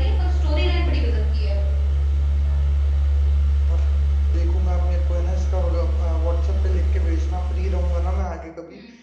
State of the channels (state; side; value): identical; both; correlation 1.00